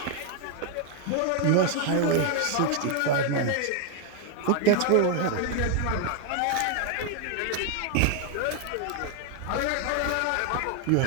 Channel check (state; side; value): different; both; correlation 0.00